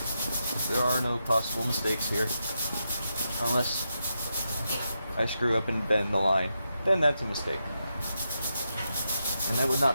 There are no possible mistakes here, unless I screw up and bend the line. Then that's a mistake. And that would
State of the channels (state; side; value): inverted; both; correlation -0.85